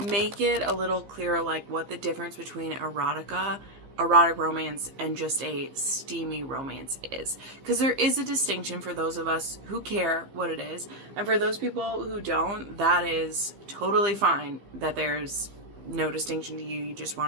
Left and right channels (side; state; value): left; late; 15 ms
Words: make it a little clearer, like what the difference between erotic romance and just a steamy romance is, because there is a distinction for those of us who care what it is, and for those people who don't, that is totally fine, that there's no distinction to you. You just